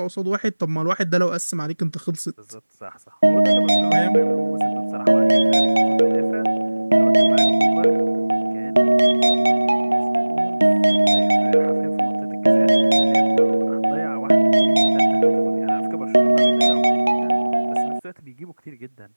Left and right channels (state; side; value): inverted; both; correlation -1.00